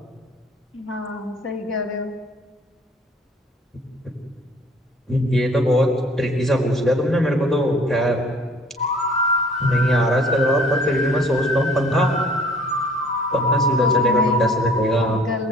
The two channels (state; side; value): normal; both; correlation 0.54